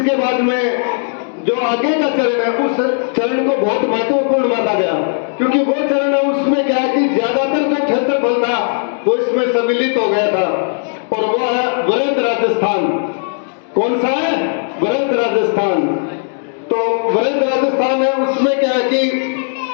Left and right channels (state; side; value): silent; right; digital silence